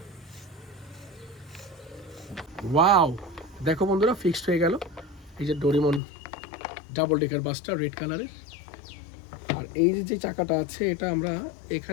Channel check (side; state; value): right; drops out; at 6.0 s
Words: ওয়াও, দেখো বন্ধুরা ফিক্সড হয়ে গেল এই যে ডোরিমন ডাবল ডেকার বাসটা রেড কালারের। আর এই যে চাকাটা আছে এটা আমরা